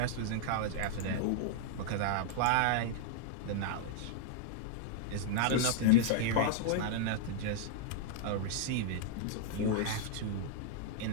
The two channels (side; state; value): both; different; correlation -0.01